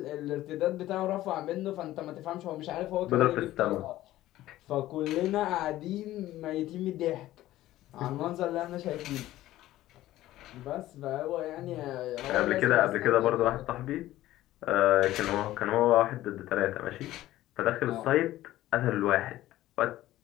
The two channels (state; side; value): quieter; right; 15.1 dB